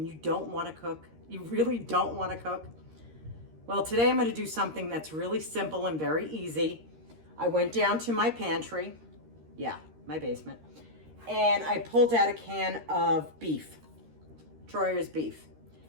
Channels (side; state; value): left; late; 13 ms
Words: you don't want to cook? You really don't want to cook? Well, today I'm going to do something that's really simple and very easy. I went down to my pantry, my basement, and I pulled out a can of beef, Troyer's beef.